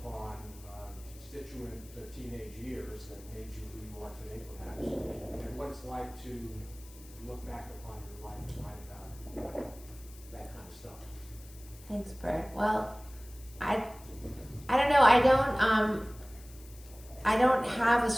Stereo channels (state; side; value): noise; left; hiss, 21 dB below the sound